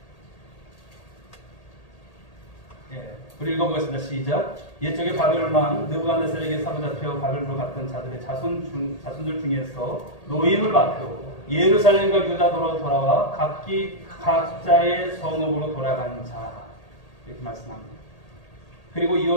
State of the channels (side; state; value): right; late; 1.8 ms